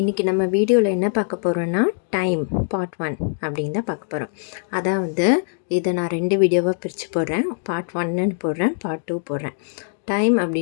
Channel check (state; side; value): silent; right; digital silence